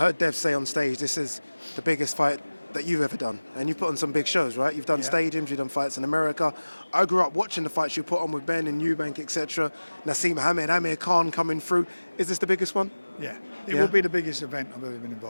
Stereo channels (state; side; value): inverted; both; correlation -1.00